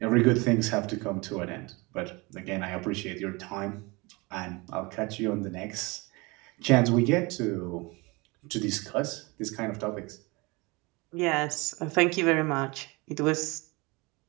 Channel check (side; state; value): left; quieter; 25.6 dB